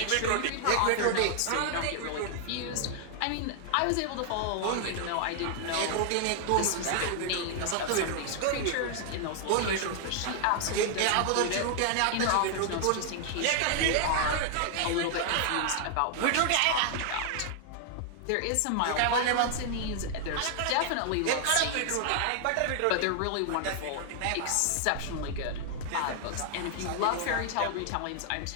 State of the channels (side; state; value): both; different; correlation 0.00